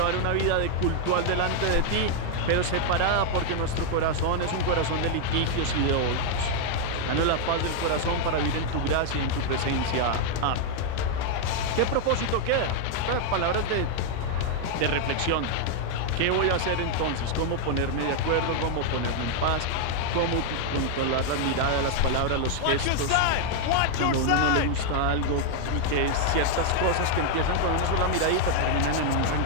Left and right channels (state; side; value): different; both; correlation 0.00